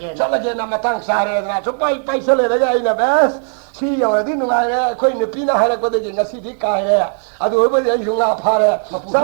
나 마땅 사레나 수파이 파이설네 아이나 베스 시여디 누가에 코이네 피나 하라 거데 나시디 카에 아도 오버지 흉아 파레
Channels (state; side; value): silent; left; 60 dB below the other